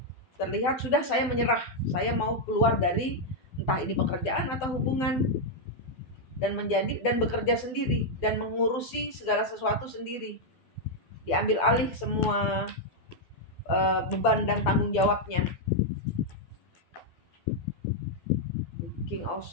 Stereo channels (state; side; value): late; right; 12 ms